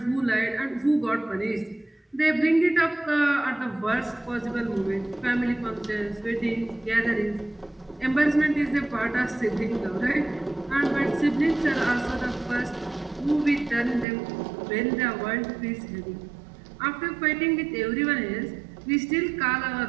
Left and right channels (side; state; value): left; drops out; at 14.1 s